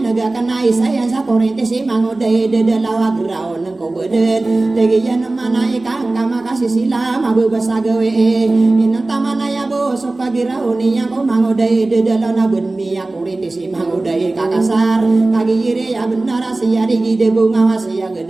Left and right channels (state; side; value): quieter; left; 3.0 dB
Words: naga kanai saya sa korente si mangodai dedelawa graon ko beden tegi yan manai kang kama kasih sila mabubasa gawe inang tamana ya bo so pagiraoni yang ko mangodai dedelawa ben miya korente si mangodai kakasar kagi ire ya benar sia digi de bunga wasia